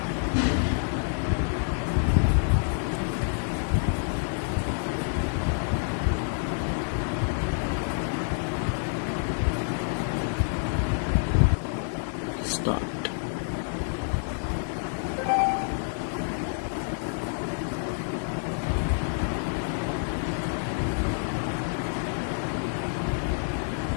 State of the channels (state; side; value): silent; right; digital silence